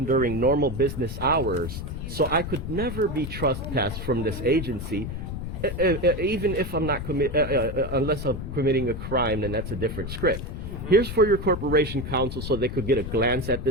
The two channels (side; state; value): left; noise; rumble, 6 dB below the sound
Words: during normal business hours. So I could never be trespassed from this agency, even if I'm not unless I'm committing a crime, then that's a different script. Here's for your corporation counsel so they could get a glance at